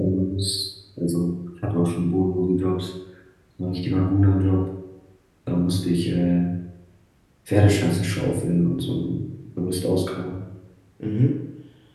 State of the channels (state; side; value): identical; both; correlation 1.00